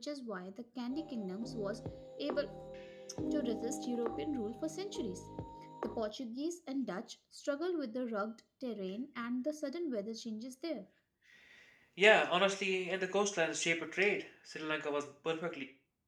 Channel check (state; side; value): identical; both; correlation 1.00